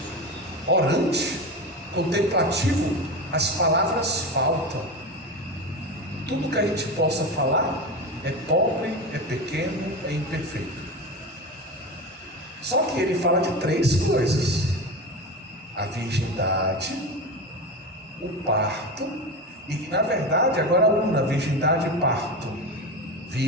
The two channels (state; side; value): normal; both; correlation 0.23